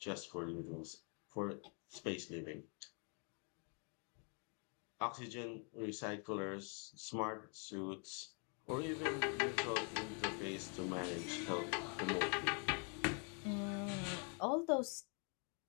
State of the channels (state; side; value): quieter; right; 39.7 dB